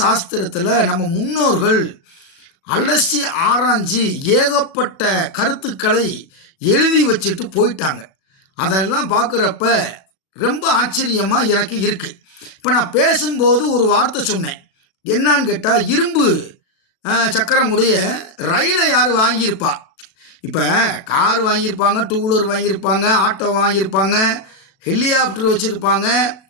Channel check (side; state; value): right; late; 37 ms